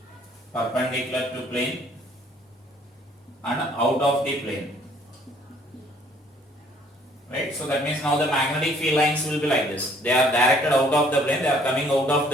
and out of the plane, right? So that means now the magnetic field lines will be like this. They are directed out of the plane, they are coming out of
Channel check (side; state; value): both; normal; correlation 0.60